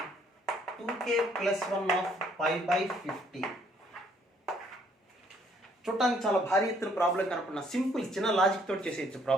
2k plus 1 of pi by 15. చూడటానికి చాలా భారీ ఎత్తున ప్రాబ్లం కనుకున్న సింపుల్ చిన్న లాజిక్ తోటి చేసేయచ్చు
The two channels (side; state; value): both; normal; correlation 0.65